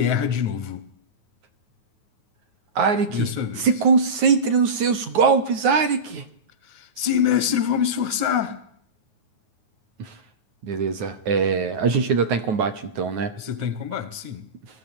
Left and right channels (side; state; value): left; late; 9.4 ms